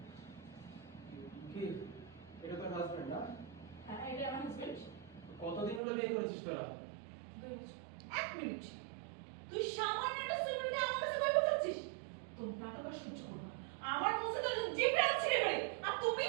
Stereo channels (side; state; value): left; drops out; at 5.8 s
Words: কি এটা তোর হাজবেন্ড না? হ্যাঁ, এটা আমার হাজবেন্ড। কতদিন হলো বিয়ে করেছিস তোরা? 2 বছর। 1 মিনিট। তুই সামান্য একটা স্টুডেন্টকে আমার কাছে কই বলছিস? তোর নাটক আর সহ্য করব না। আমার কাছে তো জিপে আছে রে। আর তুমি